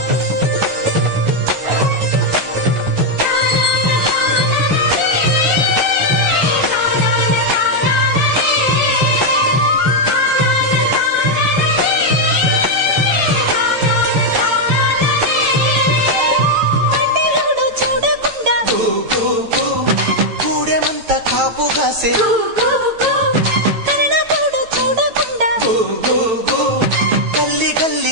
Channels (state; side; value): late; left; 9.0 ms